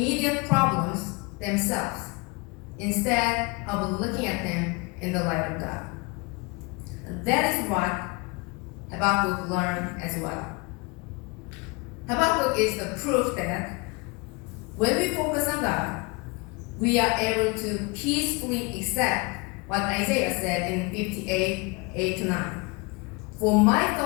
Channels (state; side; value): quieter; right; 27.5 dB